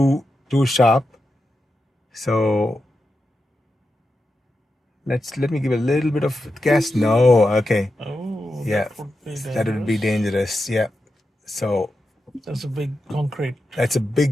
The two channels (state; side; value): normal; both; correlation 0.89